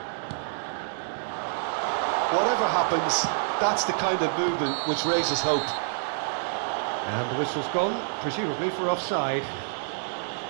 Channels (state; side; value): silent; left; digital silence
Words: Whatever happens, that's the kind of movement which raises hope. And the whistle's gone, presumably for offside.